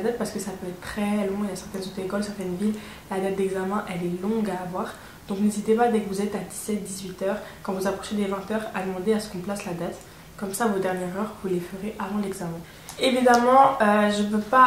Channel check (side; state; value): both; identical; correlation 1.00